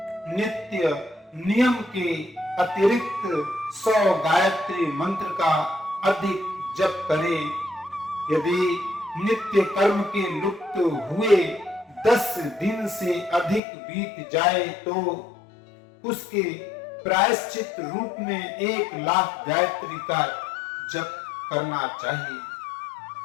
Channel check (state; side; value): drops out; right; at 13.6 s